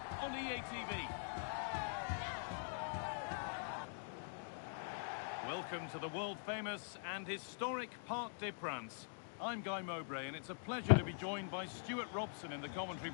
on EA TV. Welcome to the world-famous and historic Parc des Princes. I'm Guy Mowbray, and it's a pleasure to be joined by Stuart Robson in the commentary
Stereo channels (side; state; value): right; silent; digital silence